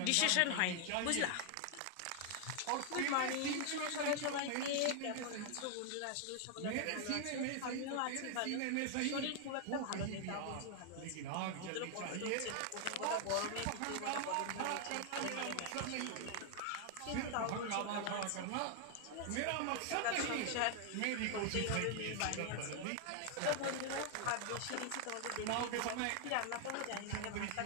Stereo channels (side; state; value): both; different; correlation 0.00